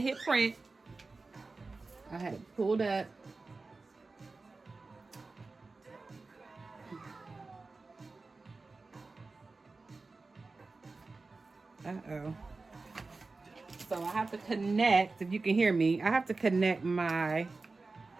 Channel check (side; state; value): left; quieter; 3.7 dB